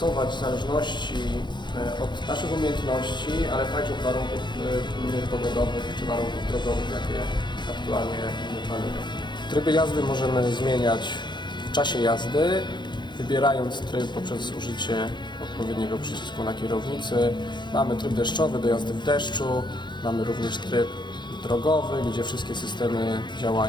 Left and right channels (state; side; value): late; right; 0.22 ms